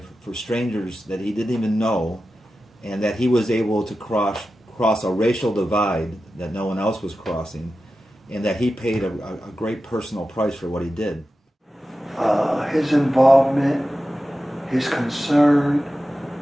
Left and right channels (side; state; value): both; normal; correlation 0.93